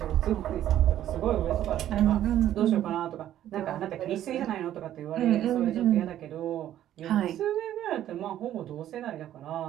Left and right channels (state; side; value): quieter; left; 12.0 dB